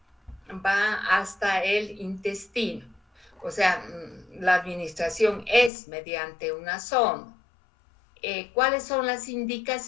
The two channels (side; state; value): right; drops out; at 5.7 s